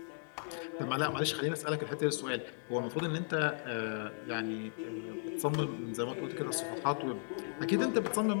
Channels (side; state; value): right; silent; digital silence